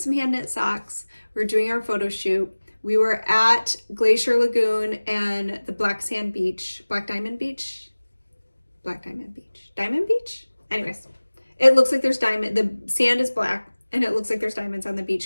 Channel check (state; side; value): inverted; both; correlation -1.00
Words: hand knit socks. We were doing our photo shoot. We were at Glacier Lagoon and the Diamond Beach. Anyways, it looks like there's diamond. The sand is black and it looks like there's diamonds on the